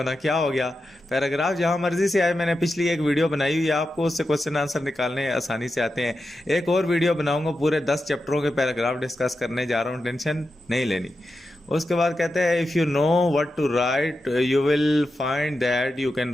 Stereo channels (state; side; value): normal; both; correlation 0.90